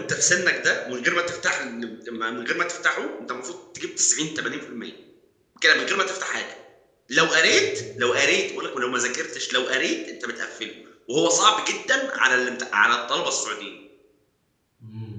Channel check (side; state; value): both; identical; correlation 1.00